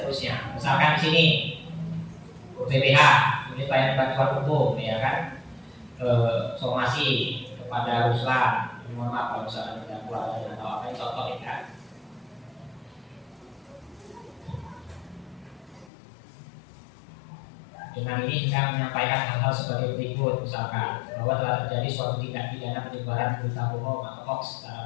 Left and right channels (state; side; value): drops out; right; at 15.9 s